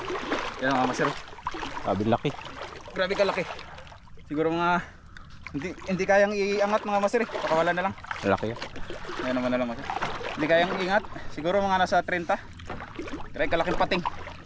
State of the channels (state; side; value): identical; both; correlation 1.00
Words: Yan mga Master. Sabi laki. Grabe kalaki. Siguro mga hindi kayang iangat mga Master eh. Pakawala na lang. Laki yan. Yan naman na lang Master. Hindi kayang iingat. Siguro mga nasa 30. Kaya kalaking pating.